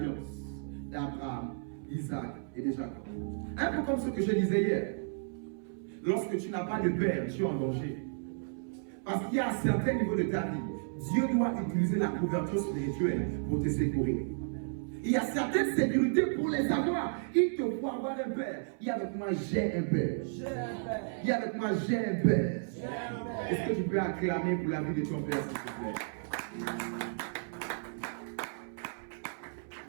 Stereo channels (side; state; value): left; silent; 56 dB below the other